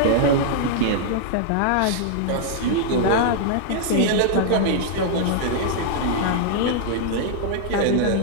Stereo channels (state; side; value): different; both; correlation -0.01